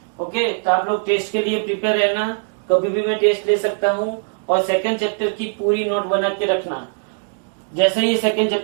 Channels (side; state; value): left; silent; digital silence